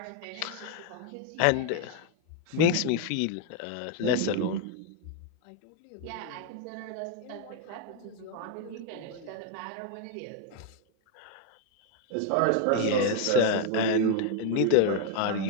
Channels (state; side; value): different; both; correlation 0.00